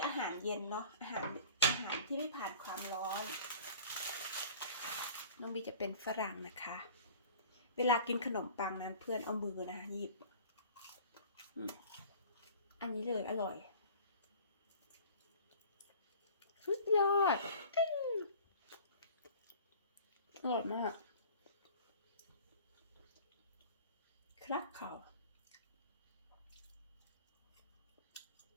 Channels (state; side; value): inverted; both; correlation -0.45